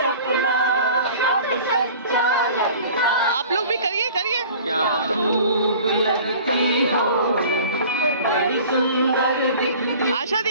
आप लोग भी करिए। क्या खूब लगती हो, बड़ी सुंदर दिखती। आशा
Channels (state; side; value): inverted; both; correlation -0.45